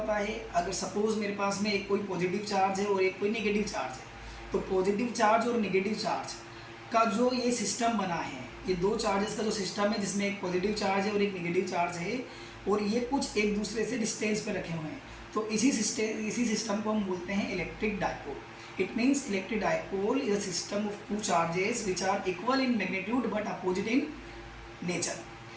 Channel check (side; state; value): both; identical; correlation 1.00